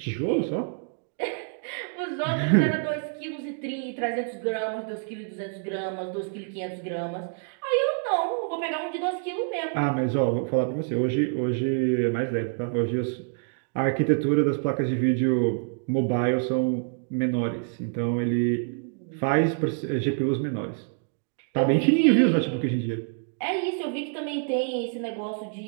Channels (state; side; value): silent; left; 60 dB below the other